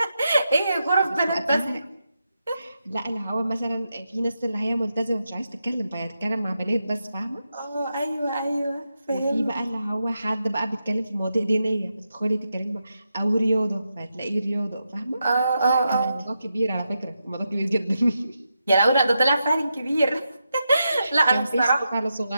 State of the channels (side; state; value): both; inverted; correlation -0.87